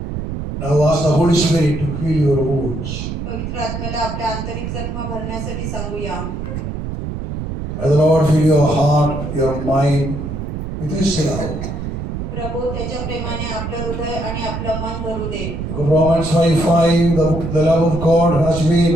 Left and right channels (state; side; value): noise; right; rumble, 6 dB below the sound